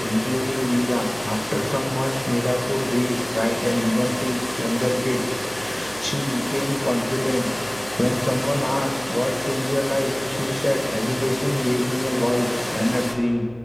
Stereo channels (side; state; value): left; noise; hum, 23 dB below the sound